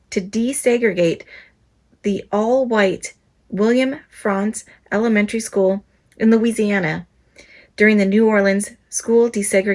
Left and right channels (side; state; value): both; identical; correlation 1.00